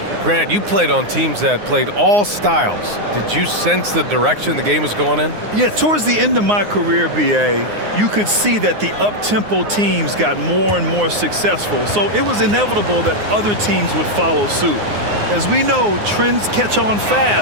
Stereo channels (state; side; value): late; left; 9.6 ms